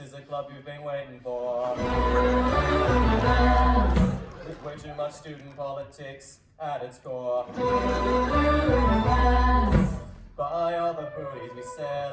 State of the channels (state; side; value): identical; both; correlation 1.00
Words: a club you've been waiting for. With way too much student politics at its core. Buy all the booties we sell